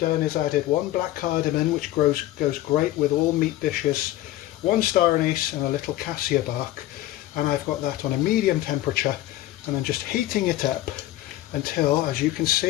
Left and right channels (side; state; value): right; quieter; 14.9 dB